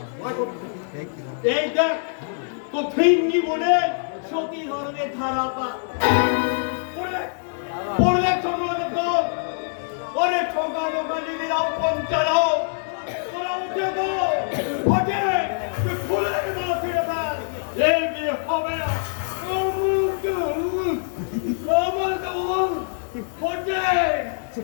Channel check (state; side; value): silent; right; digital silence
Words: এই দেখ তো ফিঙ্গি বলে সতী ধরনের ধারাটা পড়লে তোমরা দেখো, ওরে ঠোকা বোকা নিবিরাও পঞ্চায়েত তোরা উঠে গো ওঠে ফুলের মাঝে এই বিয়ে হবে না।